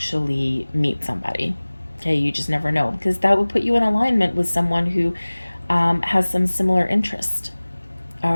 meet somebody. Okay, you just never know, because that would put you in alignment with someone who has some similar interest,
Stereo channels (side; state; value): both; inverted; correlation -1.00